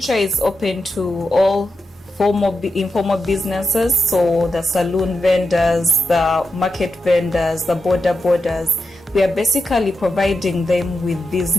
is open to all informal businesses, so the saloon vendors, the market vendors, the borders. We are basically providing them with these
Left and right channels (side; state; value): both; normal; correlation 0.88